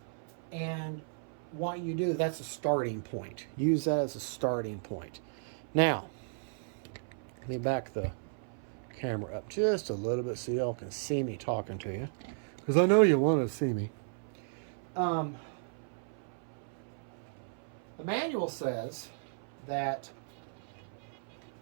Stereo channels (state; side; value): silent; left; 55 dB below the other